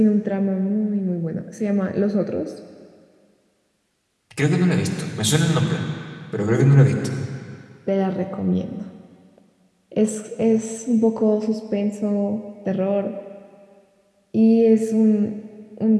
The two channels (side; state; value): both; identical; correlation 1.00